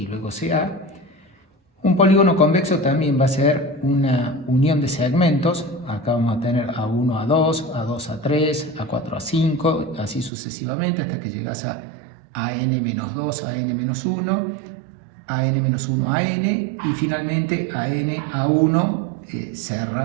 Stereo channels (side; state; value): left; drops out; at 10.3 s